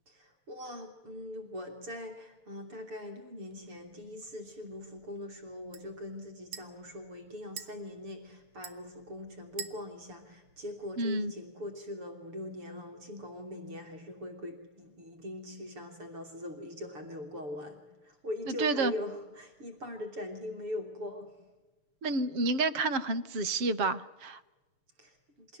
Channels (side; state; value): left; late; 6.8 ms